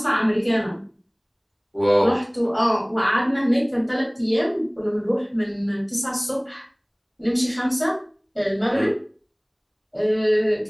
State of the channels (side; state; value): both; identical; correlation 1.00